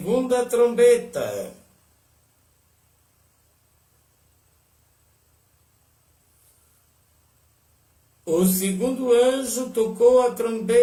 trombeta. O segundo anjo tocou a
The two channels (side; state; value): both; identical; correlation 1.00